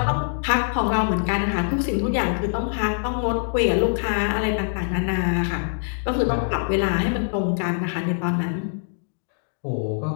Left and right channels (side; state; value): right; silent; digital silence